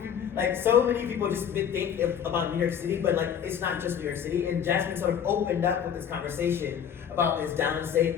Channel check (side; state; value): right; quieter; 8.4 dB